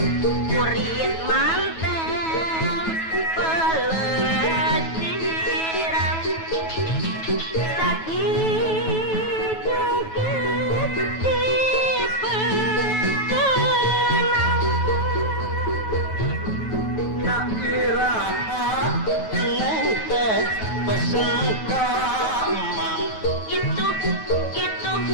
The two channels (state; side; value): late; right; 9.2 ms